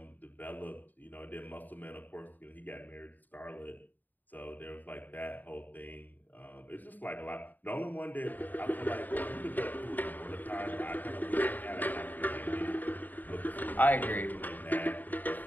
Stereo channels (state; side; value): late; right; 0.086 ms